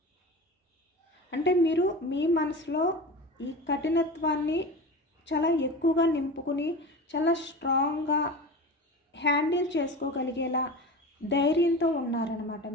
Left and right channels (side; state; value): both; normal; correlation 0.31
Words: అంటే మీరు మీ మనసులో ఈ కఠినత్వాన్ని చాలా ఎక్కువగా నింపుకుని చాలా స్ట్రాంగ్గా హ్యాండిల్ చేసుకోగలిగేలా ధైర్యంతో ఉన్నారనమాట